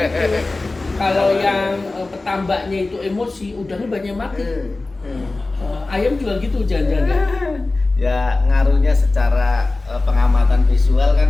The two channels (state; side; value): quieter; right; 3.3 dB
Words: kalau yang petambaknya itu emosi, udangnya banyak mati. Ayam juga gitu jangan-jangan. Ya ngaruhnya secara pengamatan visual